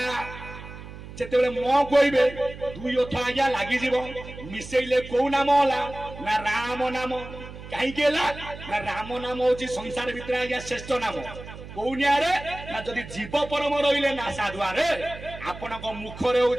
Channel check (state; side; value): noise; right; hum, 14 dB below the sound